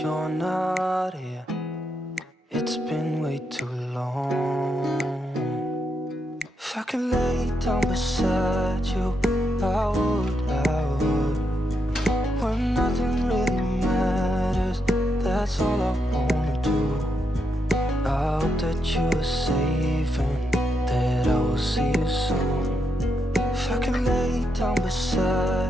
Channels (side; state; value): both; normal; correlation 0.81